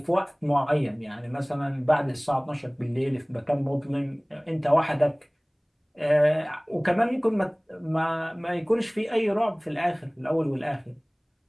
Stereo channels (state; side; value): identical; both; correlation 1.00